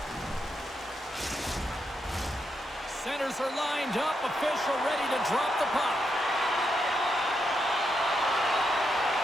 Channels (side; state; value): both; normal; correlation 0.82